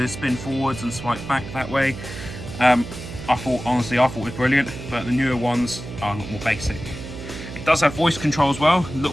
spin forwards and swipe back that way. Honestly, I thought it was brilliant, but the newer ones are a lot more basic. It does have voice control as well, a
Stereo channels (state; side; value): noise; right; hum, 11 dB below the sound